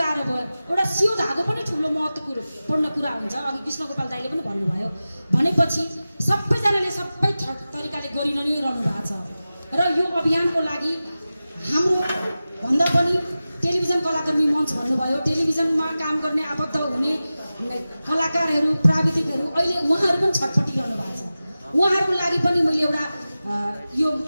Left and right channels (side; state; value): both; inverted; correlation -0.95